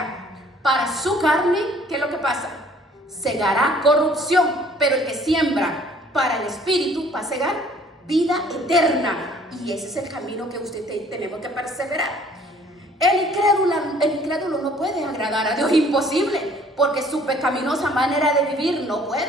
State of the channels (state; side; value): normal; both; correlation 0.57